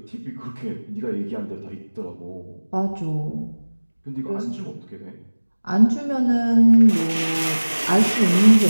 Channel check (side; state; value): both; inverted; correlation -1.00